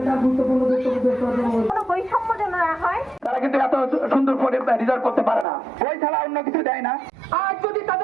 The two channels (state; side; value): drops out; left; at 5.5 s